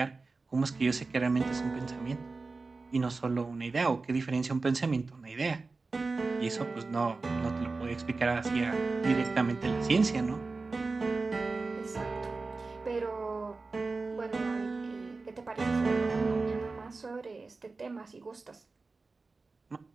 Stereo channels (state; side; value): quieter; left; 3.9 dB